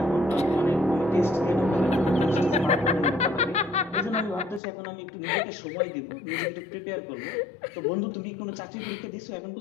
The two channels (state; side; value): drops out; right; at 4.6 s